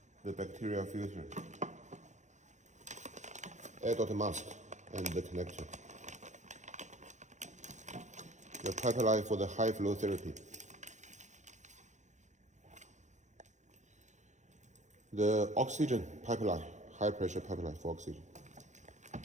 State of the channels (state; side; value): late; left; 0.35 ms